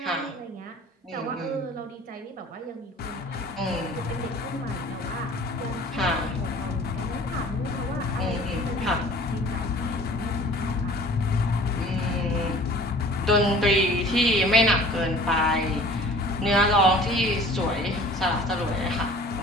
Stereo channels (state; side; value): normal; both; correlation 0.47